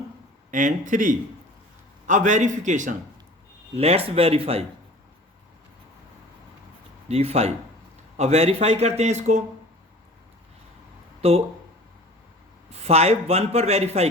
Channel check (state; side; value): normal; both; correlation 0.44